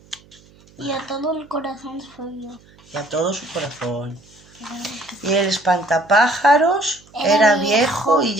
Y a todo el corazón suyo. y a todo su corazón. Y el espantapájaros era viejo y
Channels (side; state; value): right; noise; hum, 27 dB below the sound